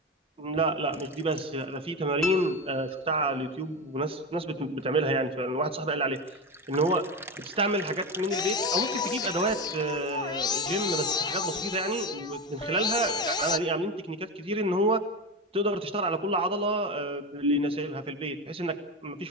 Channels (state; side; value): normal; both; correlation 0.19